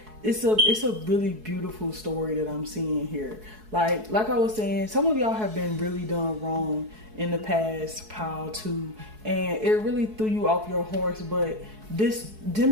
it's a really beautiful story that I'm seeing here. Like I was saying, some of y'all have been really done wrong in the past pile too, and it really threw you off your horse. But this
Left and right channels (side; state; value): left; late; 4.6 ms